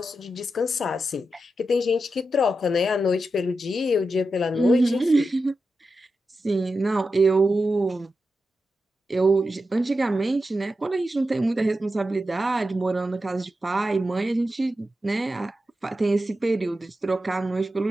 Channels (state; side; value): normal; both; correlation 0.89